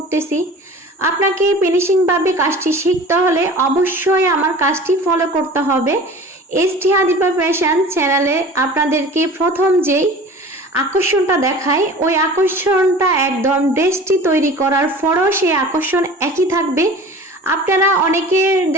আপনাকে ফিনিশিং ভাবে কাজটি শিখতে হলে অবশ্যই আমার কাজটি ফলো করতে হবে। এসটি হাদিফা ফ্যাশন চ্যানেলে আপনাদেরকে প্রথম যেই আকর্ষণটা দেখায়, ওই আকর্ষণটা একদম ড্রেসটি তৈরি করার পরও সেই আকর্ষণ একই থাকবে। আপনারা অনেকে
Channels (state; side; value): normal; both; correlation 0.40